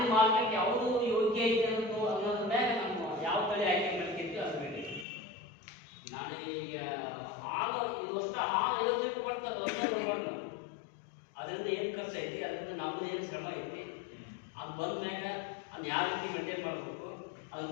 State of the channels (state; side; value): drops out; right; at 5.1 s